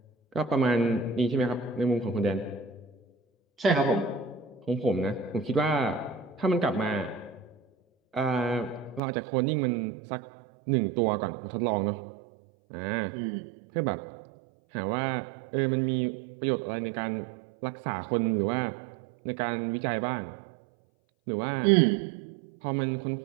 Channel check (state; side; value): drops out; left; at 9.0 s